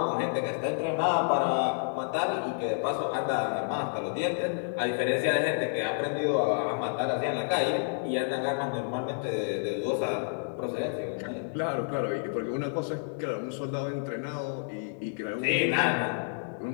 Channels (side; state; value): right; silent; digital silence